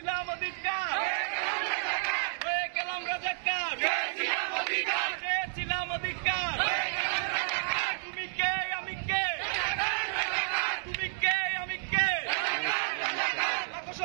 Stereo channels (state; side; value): silent; left; digital silence